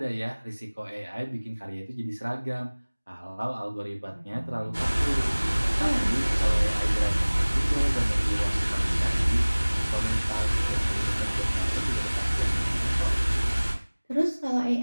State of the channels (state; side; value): inverted; both; correlation -1.00